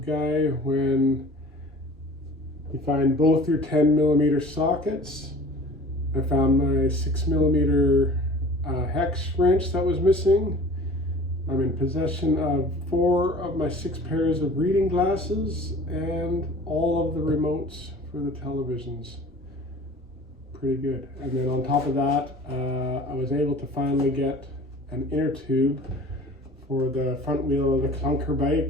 guy when you find both your 10mm sockets. I found my 6mm hex wrench that was missing. I'm in possession of 4 of my 6 pairs of reading glasses and all of the remotes for the televisions. Pretty good. And then on top of that, I was able to finally get an inner tube for the front wheel of the clunker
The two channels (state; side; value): normal; both; correlation 0.44